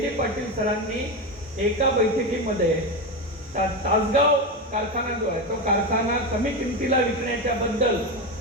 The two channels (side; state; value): both; normal; correlation 0.15